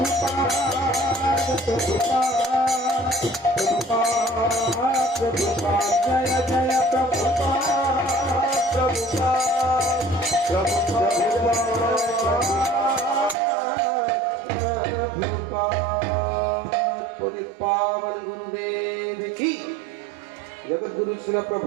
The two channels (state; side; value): drops out; left; at 13.4 s